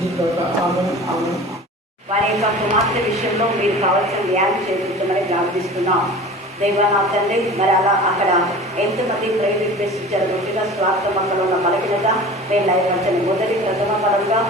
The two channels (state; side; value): normal; both; correlation 0.39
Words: వారి యొక్క కుమార్తె విషయంలో మీరు కావాల్సిన న్యాయం చేయించమని ప్రార్థిస్తున్నాం. దేవా తండ్రి, మరి అలా అక్కడ ఎంతమంది ప్రేమ రిక్వెస్ట్ ఇచ్చారు. ముఖ్యంగా స్వార్థమక్కలు ఉన్న బలహీనత మేము లైవచ్చని మొదటి ప్రథమ పరంగా